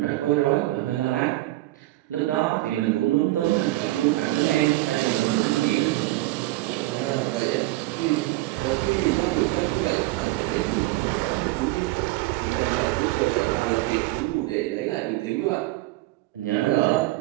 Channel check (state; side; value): quieter; left; 18.1 dB